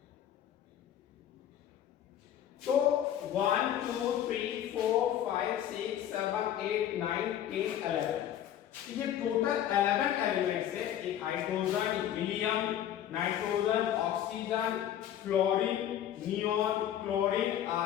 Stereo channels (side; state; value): right; quieter; 10.8 dB